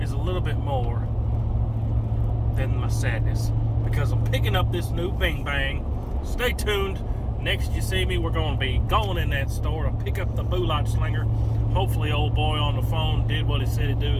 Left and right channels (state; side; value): identical; both; correlation 1.00